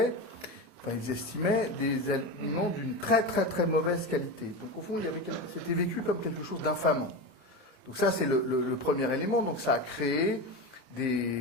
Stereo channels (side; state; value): left; late; 28 ms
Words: enfin ils estimaient, des aliments d'une très très très mauvaise qualité. Donc au fond, c'était vécu comme quelque chose d'infamant. Donc ça, c'est le premier élément. Donc ça a créé